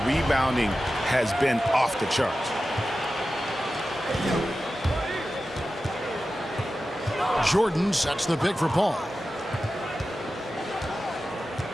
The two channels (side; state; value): both; normal; correlation 0.93